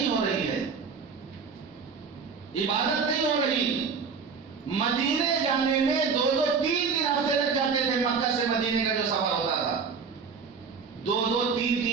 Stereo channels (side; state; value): left; quieter; 5.5 dB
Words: ہو رہی ہے، عبادت نہیں ہو رہی۔ مدینے جانے میں 2-2 3 ہفتے لگ جاتے تھے، مکہ سے مدینے کا جو سفر ہوتا تھا 2-2